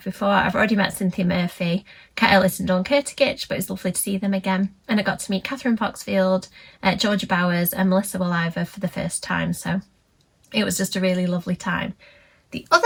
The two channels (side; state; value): both; identical; correlation 1.00